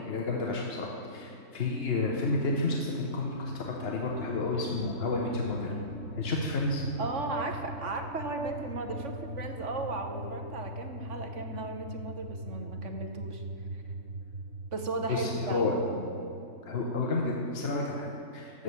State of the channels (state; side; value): late; left; 3.5 ms